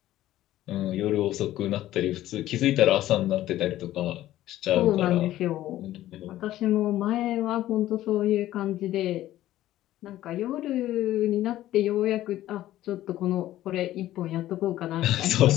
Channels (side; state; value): right; quieter; 14.2 dB